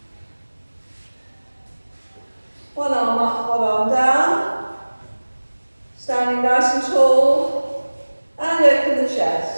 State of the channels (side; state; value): both; inverted; correlation -1.00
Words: One arm up, one arm down. Standing nice and tall. And open the